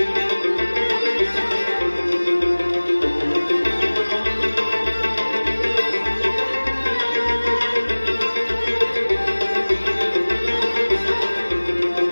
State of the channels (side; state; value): both; inverted; correlation -1.00